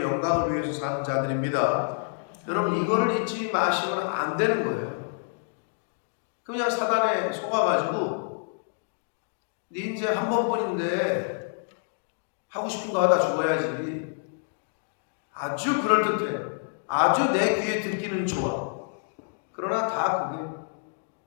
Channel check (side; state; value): right; silent; digital silence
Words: 영광을 위해서 사는 자들입니다. 여러분, 이거를 잊지 마시면 안 되는 거예요. 그냥 사단에 속아가지고 네 인생 한 번뿐인데 하고 싶은 거 하다 죽어야지. 아주 그럴듯해. 아주 내 귀에 듣기는 좋아. 그러나 다 그게